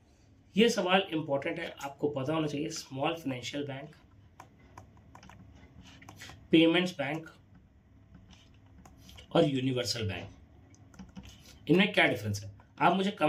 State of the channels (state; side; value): identical; both; correlation 1.00